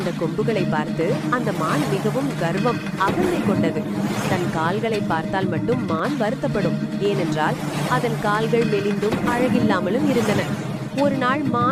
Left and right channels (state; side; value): identical; both; correlation 1.00